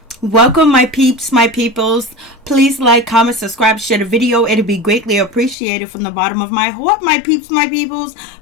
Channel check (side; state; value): right; drops out; at 5.6 s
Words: Welcome, my peeps, my peoples. Please like, comment, subscribe, share the video. It'll be greatly appreciated from the bottom of my heart, my peeps, my peoples.